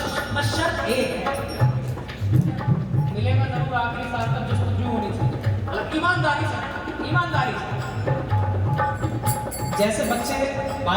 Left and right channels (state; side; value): identical; both; correlation 1.00